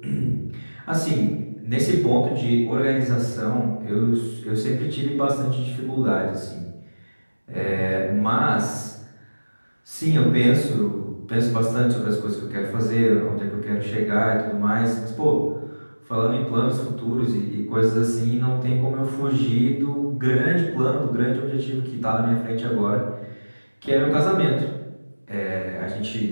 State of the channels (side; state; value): both; inverted; correlation -1.00